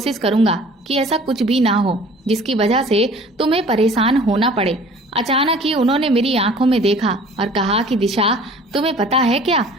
करूंगा कि ऐसा कुछ भी ना हो जिसकी वजह से तुम्हें परेशान होना पड़े। अचानक ही उन्होंने मेरी आंखों में देखा और कहा कि दिशा, तुम्हें पता है क्या,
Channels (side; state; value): both; normal; correlation 0.49